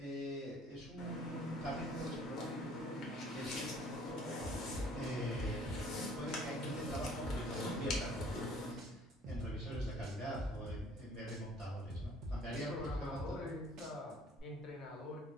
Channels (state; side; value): normal; both; correlation 0.55